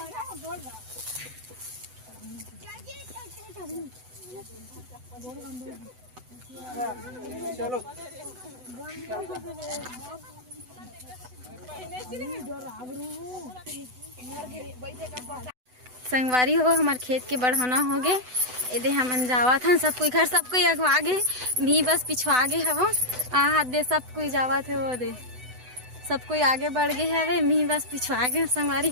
चलो संगवारी हो हमारे खेत के बढ़ाना हो गए यदि हम जावा था सब कोई घर सब कोई अगवा गए मी बस पिछवा गए हवो हाथ दे सब कोई जावा थे वो दे सब कोई आगे बढ़ गए हवे मी बस पिछवा गए संगवारी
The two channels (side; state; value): left; late; 8.0 ms